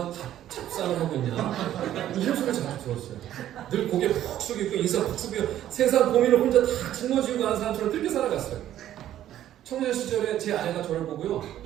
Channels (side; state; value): left; quieter; 12.1 dB